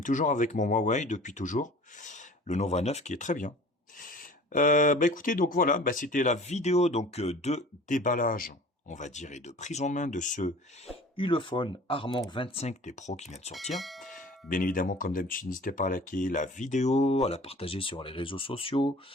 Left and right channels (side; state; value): both; normal; correlation 0.44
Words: toujours avec mon Huawei depuis toujours. Le Nova 9 qui est très bien. Bah écoutez, donc voilà, bah c'était la vidéo donc de déballage, on va dire, et de prise en main de ce Ulefone Armor 25T Pro qui vient de sortir. Bien évidemment, comme d'habitude, n'hésitez pas à liker la vidéo, à la partager sur les réseaux sociaux,